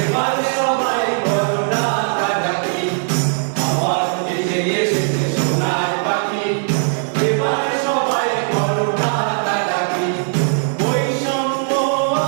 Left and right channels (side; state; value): left; silent; 67 dB below the other